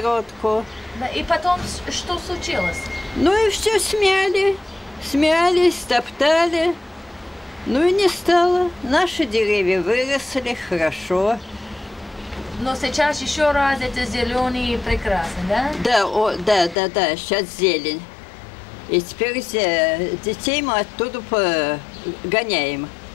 Да. И потом что случилось? Ну и все смяли. Смяли, стоптали. Ну и не стало. Наши деревья выросли хорошо. Но сейчас еще раз это зеленый и прекрасный, да? Да, да, сейчас зелень. И теперь детей мы оттуда гоняем,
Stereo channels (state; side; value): drops out; right; at 16.8 s